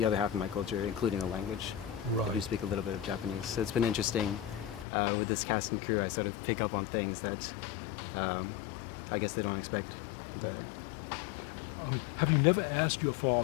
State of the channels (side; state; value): right; drops out; at 4.9 s